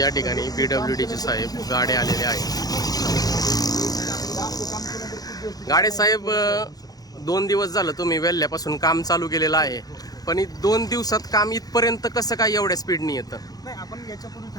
ठिकाणी PWDचे साहेब गाडे आलेले आहेत. गाडे साहेब 2 दिवस झालं तुम्ही वेल्ल्यापासून काम चालू केलेलं आहे, पण 2 दिवसात काम इथपर्यंत कसं काय एवढ्या स्पीडनी येतं? नाही, आपण याच्यापूर्वी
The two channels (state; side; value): late; right; 0.18 ms